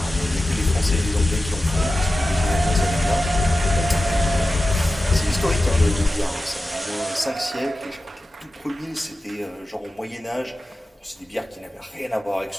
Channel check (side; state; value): both; normal; correlation 0.93